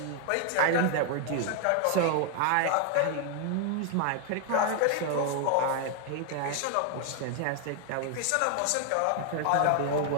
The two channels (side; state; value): both; different; correlation 0.00